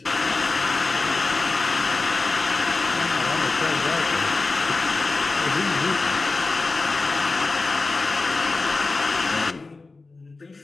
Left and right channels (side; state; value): right; quieter; 3.7 dB